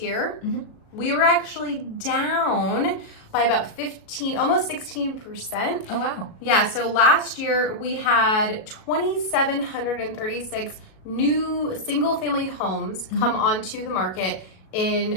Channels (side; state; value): right; late; 37 ms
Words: we were actually down by about almost 16%. Oh, wow. Yeah, so last year we had 2,736 new single family homes come onto the market